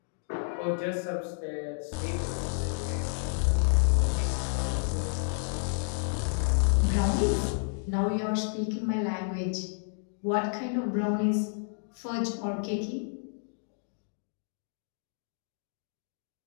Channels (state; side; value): silent; right; digital silence